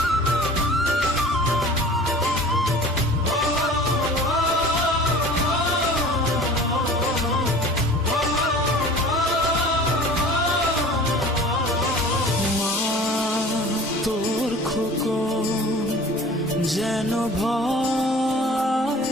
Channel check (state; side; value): normal; both; correlation 0.43